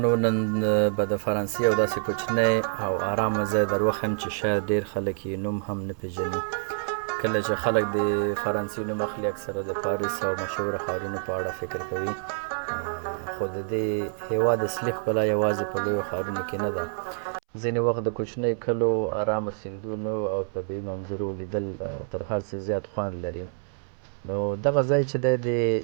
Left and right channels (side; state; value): left; silent; 60 dB below the other